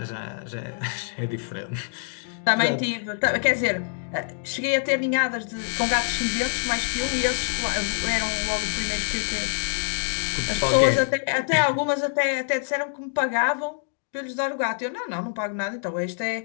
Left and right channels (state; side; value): silent; right; digital silence